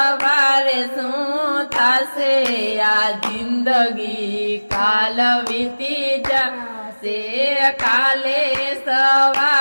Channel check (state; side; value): inverted; both; correlation -1.00